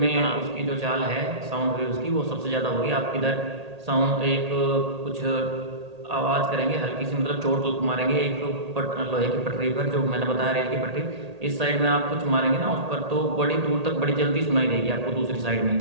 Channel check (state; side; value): late; left; 1.8 ms